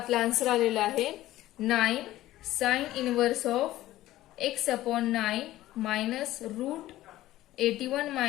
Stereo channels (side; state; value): right; quieter; 15.3 dB